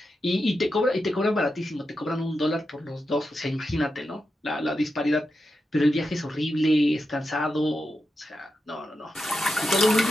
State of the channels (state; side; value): normal; both; correlation 0.88